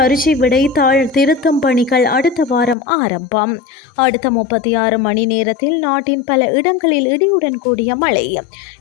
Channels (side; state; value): right; drops out; at 2.8 s